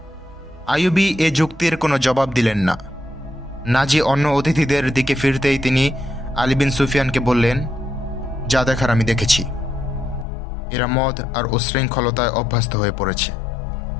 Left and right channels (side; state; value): right; drops out; at 10.2 s